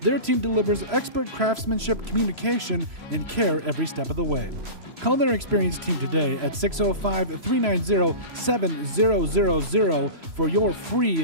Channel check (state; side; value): late; left; 3.0 ms